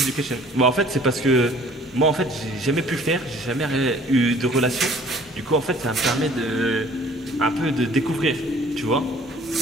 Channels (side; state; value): both; normal; correlation 0.54